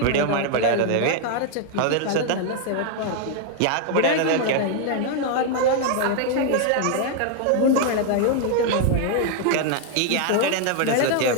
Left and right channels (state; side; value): different; both; correlation 0.00